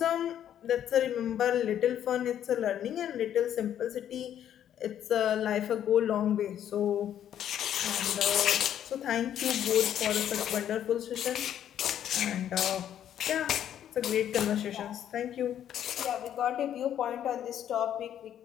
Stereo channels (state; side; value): quieter; right; 10.3 dB